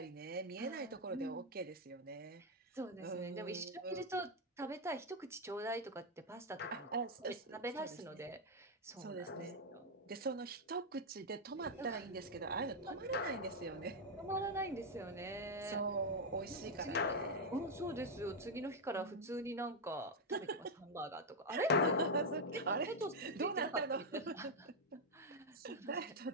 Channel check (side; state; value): both; normal; correlation 0.01